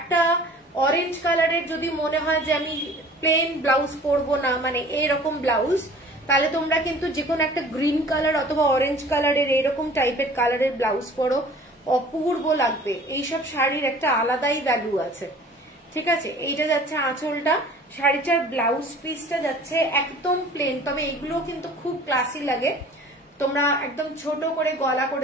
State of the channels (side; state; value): both; normal; correlation 0.47